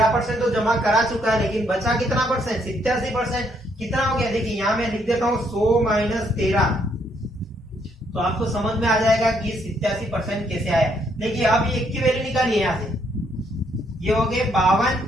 तो जमा करा चुका है, लेकिन बचा कितना परसेंट, 87%। कितना हो गया, देखिए यहाँ मैं लिख देता हूँ 100 माइनस 13, तो आपको समझ में आ जाएगा कि 87% कैसे आया। देखिए अब ये की वैल्यू निकालिए, यहाँ से ये हो गए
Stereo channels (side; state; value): both; normal; correlation 0.72